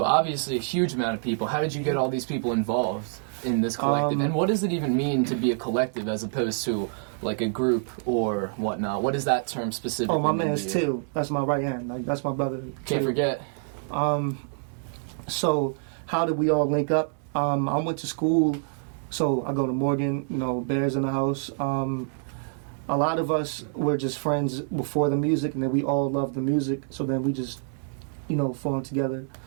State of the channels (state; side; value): silent; left; digital silence